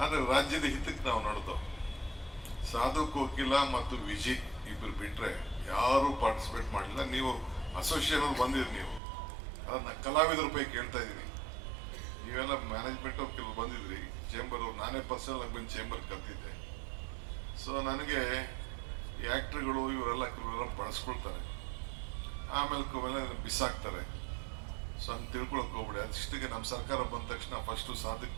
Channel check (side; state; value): left; drops out; at 9.0 s